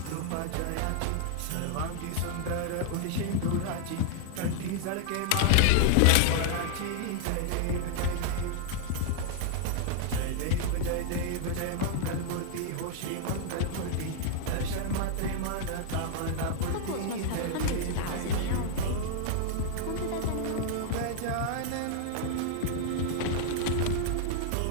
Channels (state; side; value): different; both; correlation -0.01